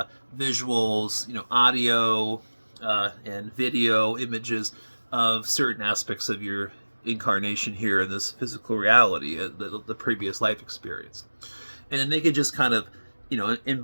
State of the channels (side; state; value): both; inverted; correlation -1.00